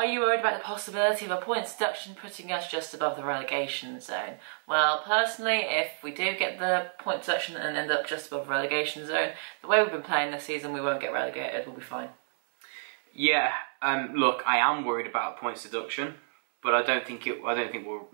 you worried about the possibility of a points deduction putting us just above the relegation zone? Well, personally, if we do get the point deduction and end up just above the relegation zone, the way we've been playing this season, we won't get relegated, we'll be fine. Yeah, look, I am worried about points deduction. But I don't think it'll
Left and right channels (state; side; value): silent; left; digital silence